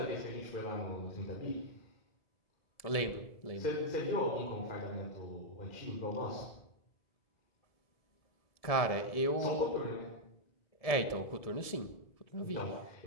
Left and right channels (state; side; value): late; right; 1.7 ms